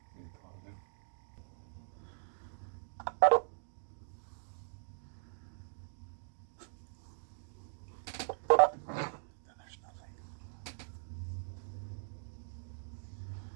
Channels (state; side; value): silent; left; digital silence